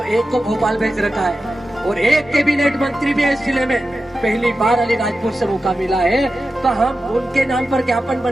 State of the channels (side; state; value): both; normal; correlation 0.92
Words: एक को भोपाल भेज रखा है, और एक कैबिनेट मंत्री भी है इस जिले में। पहली बार अलीराजपुर से मौका मिला है तो हम उनके नाम पर ज्ञापन